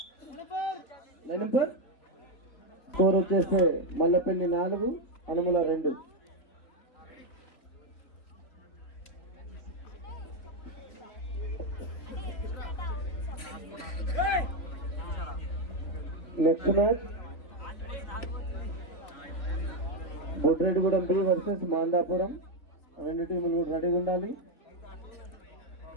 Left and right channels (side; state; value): right; late; 3.8 ms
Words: Line number score వచ్చేస్తే Mallepalli 4, Anumula 2. Next match Bodreddigudem B versus Mandapuram. 2 టీములు కూడా రెడీగా ఉండాలి.